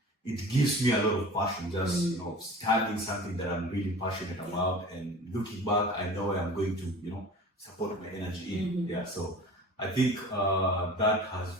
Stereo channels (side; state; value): both; normal; correlation 0.40